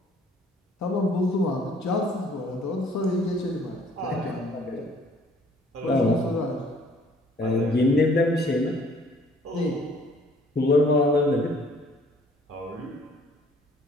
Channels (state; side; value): normal; both; correlation 0.58